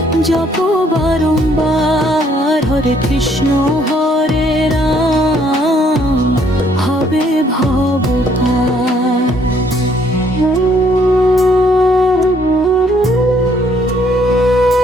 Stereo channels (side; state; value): both; normal; correlation 0.66